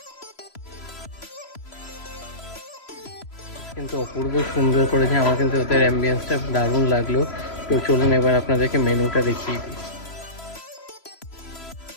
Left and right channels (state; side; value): late; right; 3.0 ms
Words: কিন্তু অপূর্ব সুন্দর করেছে, আমার কিন্তু ওদের অ্যাম্বিয়েন্সটা দারুণ লাগলো। তো চলুন এবার আপনাদেরকে মেনুটা দেখিয়ে দিই।